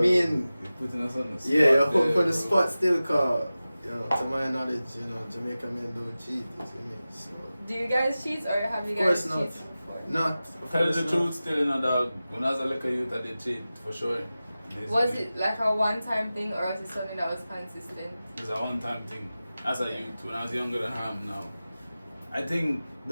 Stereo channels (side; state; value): both; inverted; correlation -0.96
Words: you're putting us on the spot. yeah, you're put on the spot still, cause you know, to my knowledge, you know, Jamaican men don't cheat. You see me? So, Do you guys cheat or have you of course guys not. cheated before? Not. Tell the truth, still in a dog. When I was a little youth, I did cheat for sure. Was it like a one-time thing or was it something that was consistent? It was a one-time thing. As a youth, when I was younger than I am now. I think